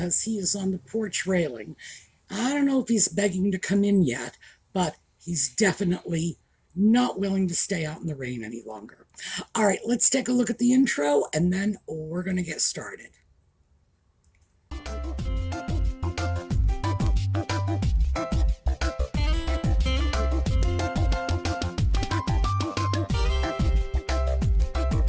he is on the porch railing. I don't know if he's begging to come in yet, but he's definitely not willing to stay out in the rain any longer. All right, let's take a look at the intro, and then we're going to get started.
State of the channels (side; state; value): both; identical; correlation 1.00